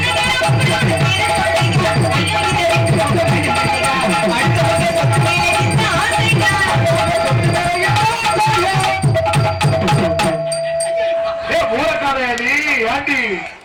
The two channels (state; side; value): identical; both; correlation 1.00